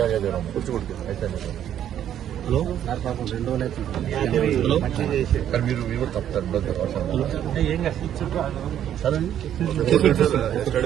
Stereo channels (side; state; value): left; quieter; 10.5 dB